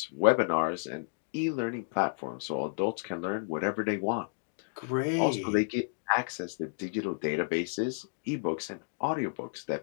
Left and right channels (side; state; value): right; silent; digital silence